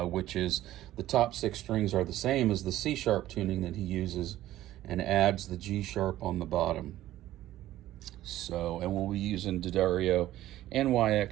is the top 6 strings are the same as the C-sharp tuning that he uses, and adds the G-sharp on the bottom. So, and we'll be using D'Addario and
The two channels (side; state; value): left; quieter; 14.3 dB